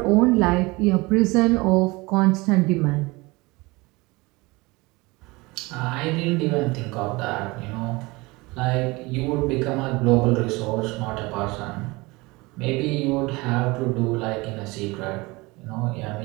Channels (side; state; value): left; quieter; 23.5 dB